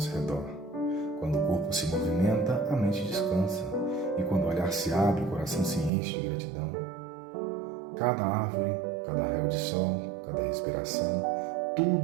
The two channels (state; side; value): drops out; left; at 5.9 s